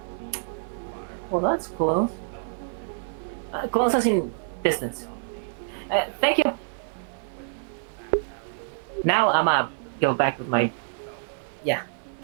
Well, that's close. Close as in distance. Thank you. Now I'ma go back with my... Yeah.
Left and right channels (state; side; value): silent; left; digital silence